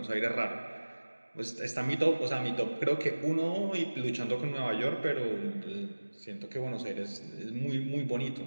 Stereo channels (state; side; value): inverted; both; correlation -1.00